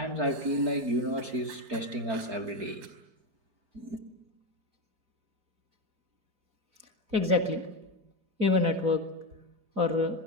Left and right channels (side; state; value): left; late; 4.9 ms